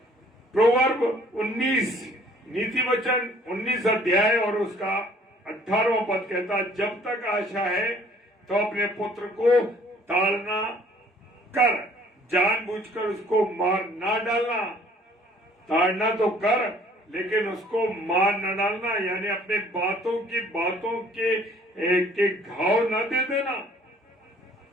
प्रोवर्ब 19, नीति वचन 19 अध्याय और उसका 18वां पद कहता, जब तक आशा है तो अपने पुत्र को ताड़ना कर, जानबूझकर उसको मार ना डालना। ताड़ना तो कर, लेकिन उसको मार न डालना, यानी अपने बातों के घाव न दे देना,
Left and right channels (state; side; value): normal; both; correlation 0.57